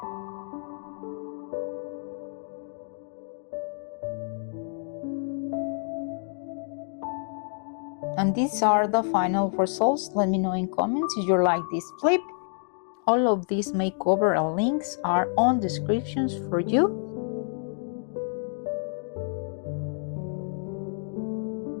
And these are the final results. Let me know in comments if you like this flip. All of these makeover links are on descriptions for you.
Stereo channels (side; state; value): right; silent; 59 dB below the other